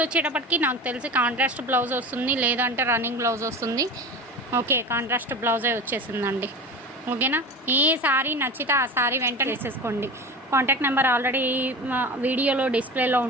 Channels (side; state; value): both; normal; correlation 0.31